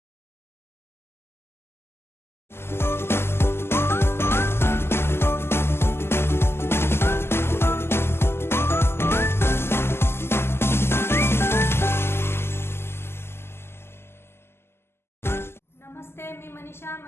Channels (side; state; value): right; late; 0.12 ms